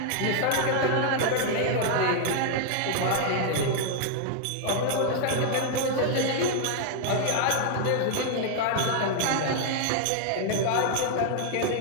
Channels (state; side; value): different; both; correlation 0.00